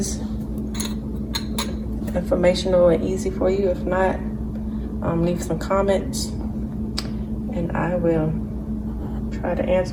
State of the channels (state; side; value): identical; both; correlation 1.00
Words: informational and easy for you. If not, leave some comments and I will try to